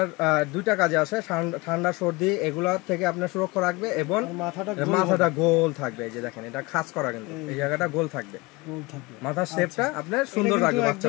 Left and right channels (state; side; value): quieter; right; 24.0 dB